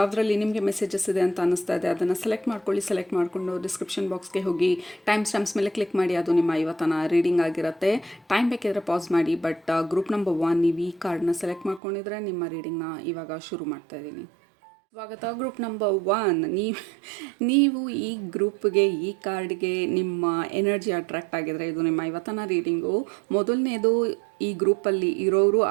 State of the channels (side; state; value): left; drops out; at 11.8 s